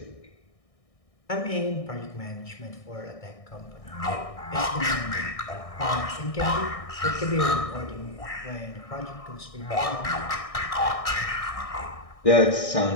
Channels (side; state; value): right; late; 1.6 ms